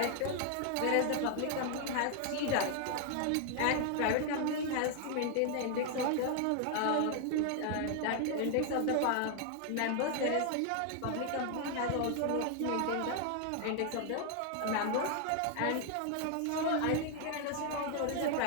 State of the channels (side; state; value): both; different; correlation 0.00